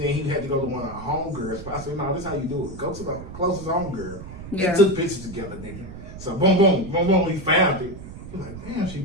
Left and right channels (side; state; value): right; noise; rumble, 12 dB below the sound